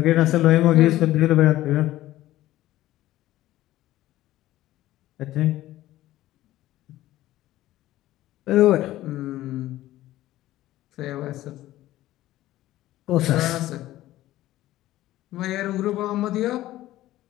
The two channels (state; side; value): quieter; right; 15.2 dB